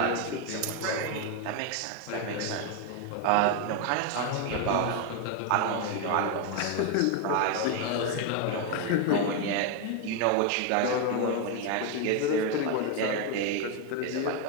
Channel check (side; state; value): both; different; correlation 0.01